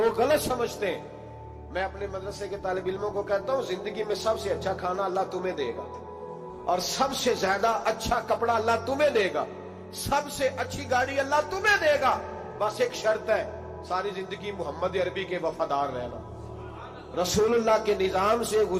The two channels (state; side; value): identical; both; correlation 1.00